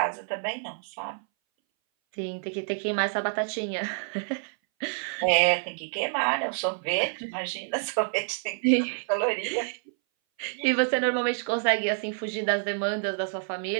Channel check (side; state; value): left; silent; 59 dB below the other